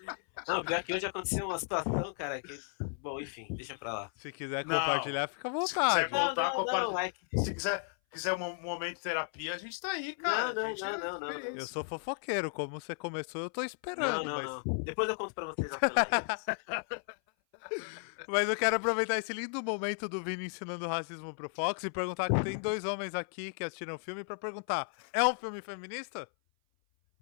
Não, pior que hoje aconteceu uma situação, cara, que... Bom, enfim, deixa pra lá. Se quiser compartilhar, fica à vontade. Se quiser voltar, Se quiser um momento de terapia, a gente tá aí, cara. Não. Eu sou fofoqueiro, como você começou, eu tô esperando. Não. Depois eu conto pra vocês. Mas eu quero aproveitar esse lindo momento do Vini ensinando racismo pro Fox e perguntar que tem dois homens aqui que assistiram o filme pra perguntar, é um filme feminista?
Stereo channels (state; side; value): silent; right; 55 dB below the other